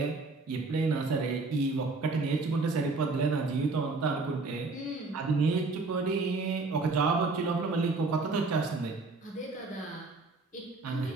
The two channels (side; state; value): left; quieter; 3.7 dB